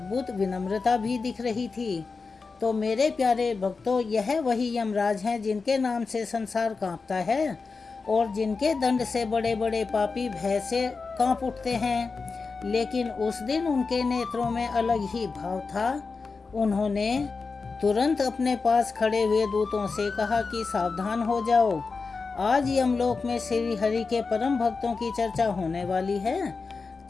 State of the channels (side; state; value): right; quieter; 4.5 dB